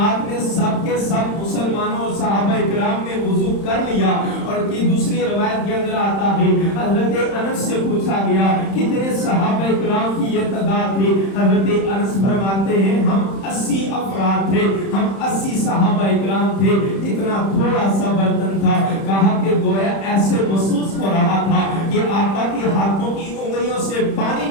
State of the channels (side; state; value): right; late; 31 ms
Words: ने सब के सब मुसलमानों और सहाबा इकराम ने वुजू कर लिया। और की दूसरी रवायत के अंदर आता है हजरत अनस से पूछा गया कितने सहाबा इकराम की ये तादाद थी। हजरत अनस फरमाते हैं हम 80 अफराद थे, हम 80 सहाबा इकराम थे। इतना थोड़ा सा बर्तन था। कहा कि गोया ऐसे महसूस हो रहा था कि आका के हाथों की उंगलियों से पानी